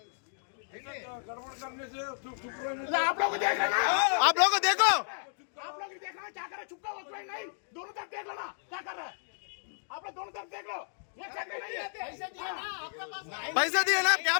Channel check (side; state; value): right; silent; digital silence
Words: आप लोग देखो आप लोग देखना क्या कर रहे चुपका हो नहीं दोनों तरफ देख लो ना क्या कर रहे आप लोग दोनों तरफ देख लो ये चेक नहीं है पैसा दिए ना क्या